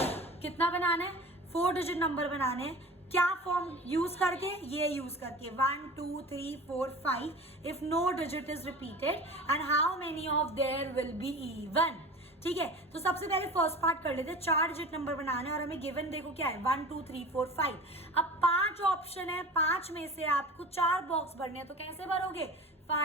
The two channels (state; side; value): normal; both; correlation 0.36